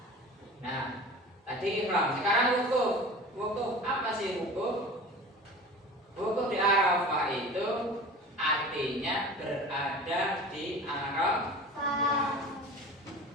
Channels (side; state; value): both; normal; correlation 0.37